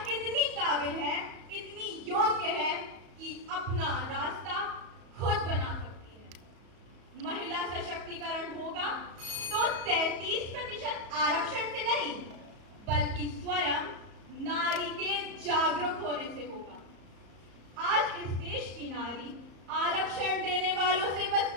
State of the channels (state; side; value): late; left; 34 ms